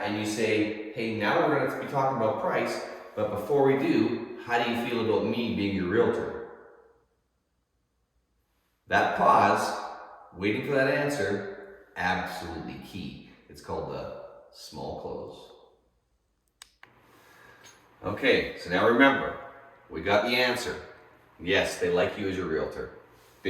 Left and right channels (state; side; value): identical; both; correlation 1.00